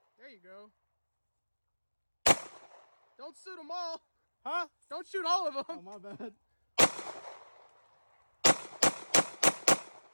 There you go. Don't shoot them all. Huh? Don't shoot all of them. Oh, my bad.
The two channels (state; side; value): inverted; both; correlation -1.00